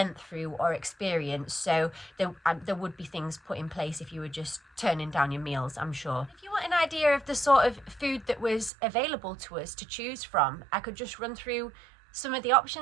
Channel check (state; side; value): drops out; left; at 8.7 s